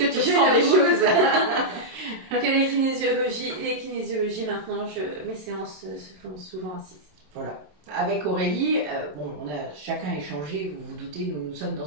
tu ressens des choses. Que les kinésiologies maintenant, mes séances se font souvent assises. Voilà. Avec Aurélie, bon, on a chacun échangé, vous vous doutez, nous sommes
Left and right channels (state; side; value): late; left; 27 ms